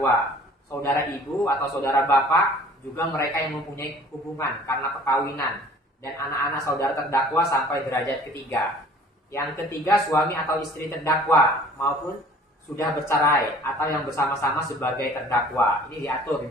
Saudara ibu atau saudara bapak, juga mereka yang mempunyai hubungan karena perkawinan, dan anak-anak saudara terdakwa sampai derajat ketiga. Yang ketiga, suami atau istri terdakwa maupun sudah bercerai atau yang bersama-sama sebagai terdakwa. Ini diatur di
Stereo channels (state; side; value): normal; both; correlation 0.50